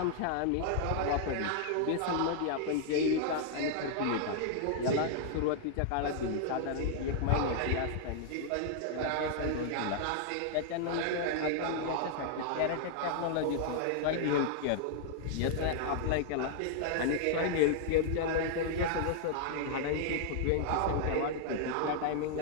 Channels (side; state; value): both; different; correlation -0.01